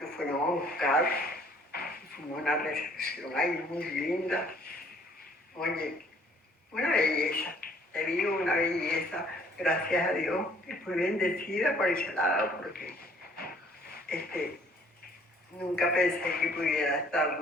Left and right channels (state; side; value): normal; both; correlation 0.59